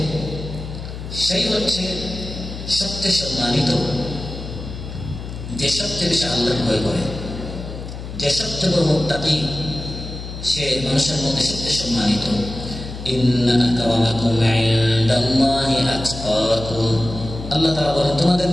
সেই হচ্ছে সবচেয়ে সম্মানিত, যে সবচেয়ে বেশি আল্লাহকে ভয় করে, যে সবচেয়ে বড় মুত্তাকি, সে মানুষের মধ্যে সবচেয়ে সম্মানিত। ইন্না আকরামাকুম ইনদাল্লাহি আতকাকুম। আল্লাহ তাআলা বলেন, তোমাদের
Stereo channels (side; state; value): left; noise; hum, 9 dB below the sound